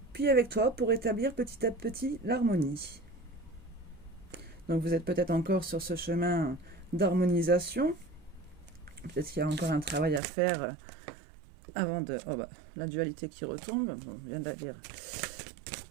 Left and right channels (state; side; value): drops out; left; at 10.2 s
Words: puis avec toi pour établir petit à petit l'harmonie. Donc vous êtes peut-être encore sur ce chemin d'harmonisation. Peut-être qu'il y a encore un travail à faire avant de... Oh bah, la dualité qui retombe, on vient de la lire.